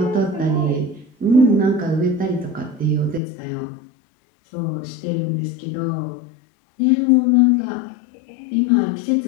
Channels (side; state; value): right; drops out; at 3.2 s